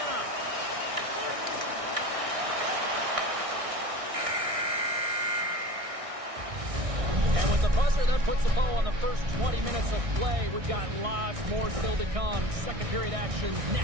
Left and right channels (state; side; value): late; left; 1.6 ms